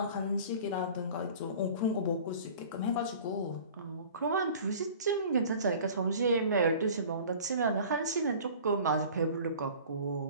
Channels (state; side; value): inverted; both; correlation -0.45